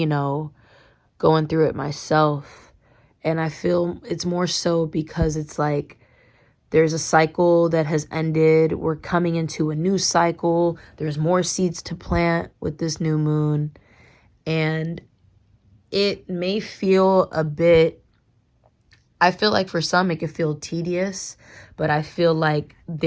going through it myself. And I feel it's more so because it's like there's a cycle that has ended. We're coming into a new cycle. There's more seeds to plant with this new moon. And it may feel a bit, I feel like for some it could feel tedious, but I feel like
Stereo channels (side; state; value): both; identical; correlation 1.00